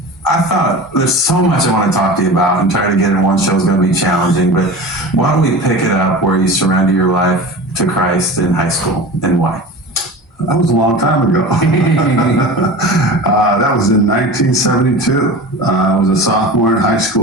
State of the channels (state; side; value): normal; both; correlation 0.33